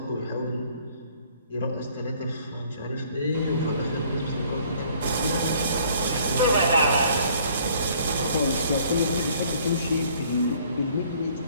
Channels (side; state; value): both; inverted; correlation -0.59